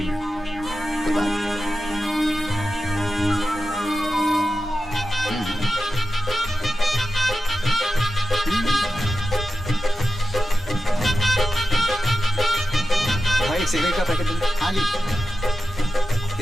में, कोई बात? सिगरेट का पैकेट दो। हाँ जी।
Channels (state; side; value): normal; both; correlation 0.92